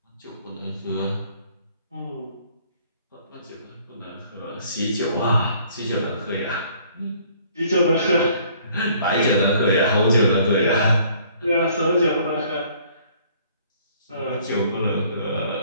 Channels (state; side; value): inverted; both; correlation -0.59